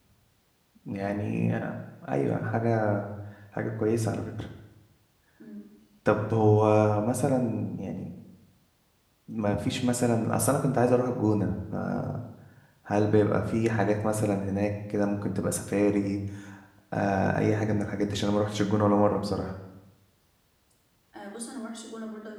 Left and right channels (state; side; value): identical; both; correlation 1.00